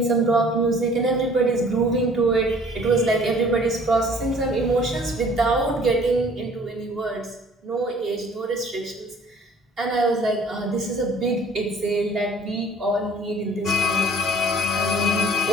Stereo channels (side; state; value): both; normal; correlation 0.53